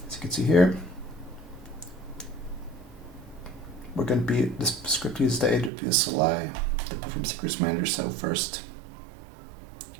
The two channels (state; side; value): drops out; left; at 5.7 s